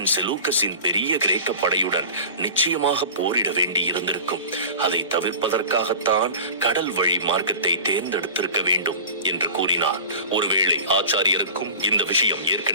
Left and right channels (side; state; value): both; inverted; correlation -0.37